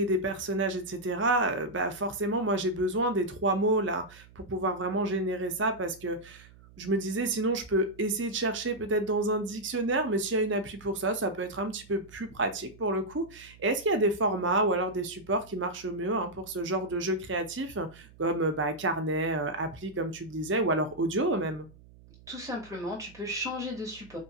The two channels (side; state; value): right; noise; hum, 23 dB below the sound